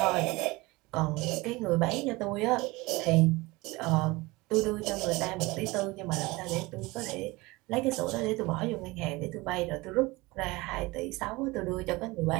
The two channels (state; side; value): quieter; left; 22.4 dB